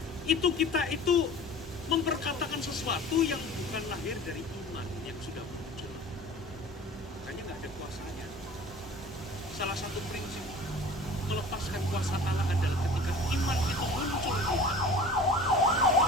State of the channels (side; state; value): both; normal; correlation 0.42